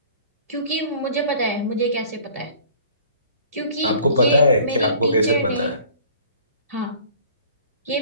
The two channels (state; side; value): inverted; both; correlation -0.50